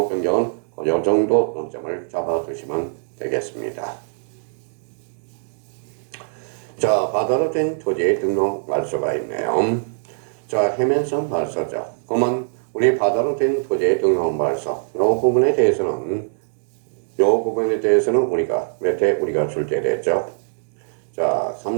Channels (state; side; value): silent; left; digital silence